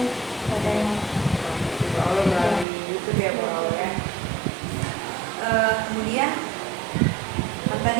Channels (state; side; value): drops out; left; at 2.7 s